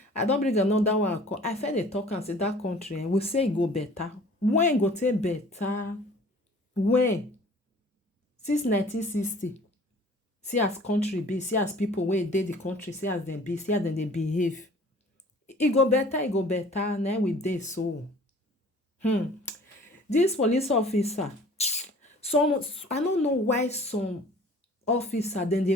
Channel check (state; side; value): normal; both; correlation 0.49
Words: I don't bring another one come. I feel dey talk and say that country, we say e go better. When e go take better? When? Since 1960. See as country be, see as people wey dey the country, see as dem be, see as dem dey behave. E go better, na we dey so. This police officer, some I no know why some officer dem